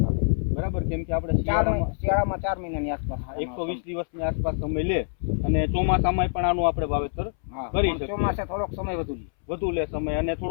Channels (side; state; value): right; silent; 61 dB below the other